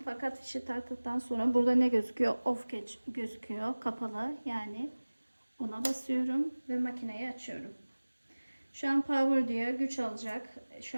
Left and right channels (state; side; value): inverted; both; correlation -1.00